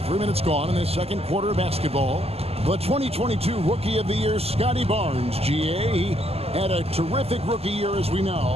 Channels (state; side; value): late; left; 0.29 ms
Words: 3 minutes gone in this second quarter of basketball. The 2022 Rookie of the Year, Scotty Barnes, GA. He had a terrific rookie year, as we know.